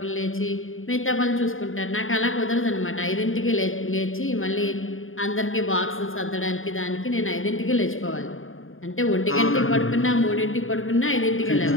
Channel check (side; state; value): right; late; 0.59 ms